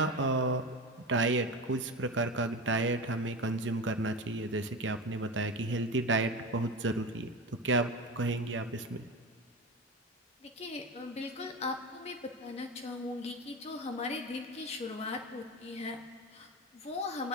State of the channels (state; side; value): normal; both; correlation 0.24